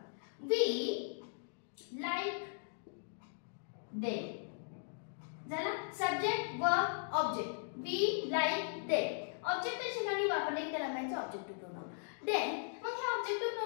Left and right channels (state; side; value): silent; right; digital silence